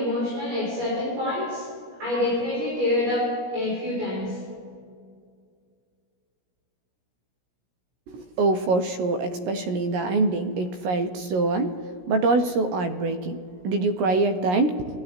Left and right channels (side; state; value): left; late; 17 ms